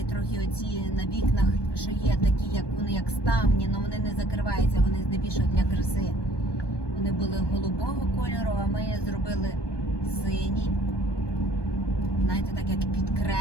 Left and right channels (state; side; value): late; right; 1.2 ms